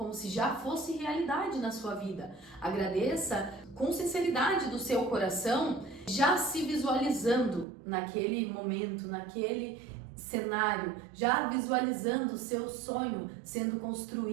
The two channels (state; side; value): drops out; left; at 7.7 s